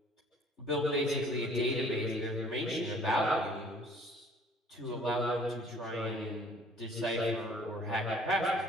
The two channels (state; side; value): normal; both; correlation 0.55